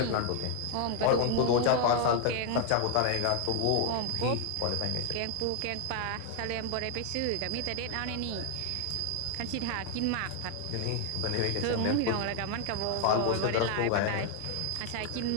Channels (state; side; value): different; both; correlation 0.00